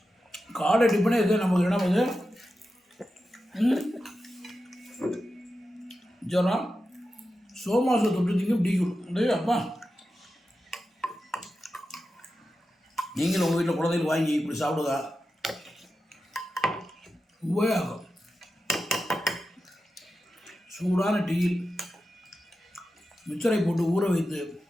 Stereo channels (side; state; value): both; normal; correlation 0.91